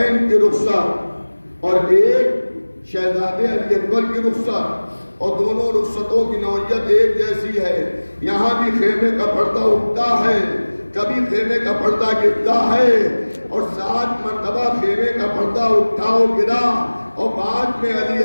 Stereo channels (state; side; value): inverted; both; correlation -1.00